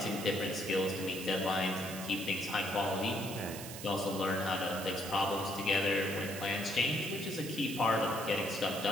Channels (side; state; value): right; noise; hiss, 10 dB below the sound